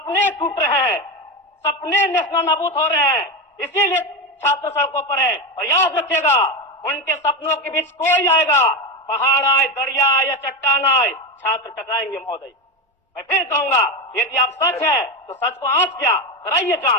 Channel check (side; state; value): both; normal; correlation 0.15